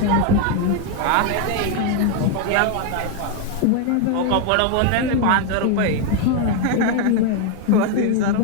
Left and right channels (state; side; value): different; both; correlation 0.01